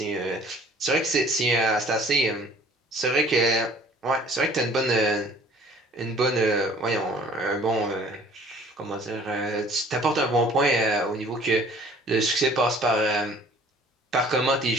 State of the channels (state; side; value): normal; both; correlation 0.53